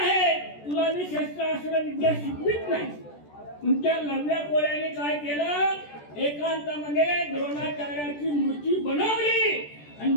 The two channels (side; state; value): right; late; 14 ms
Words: तुला मी शस्त्रास्त्र विद्या शिकवित नाही. तुमच्या लढल्या कोळ्याने काय केलं, एकांतामध्ये द्रोणाचार्याची मूर्ती बनवली आणि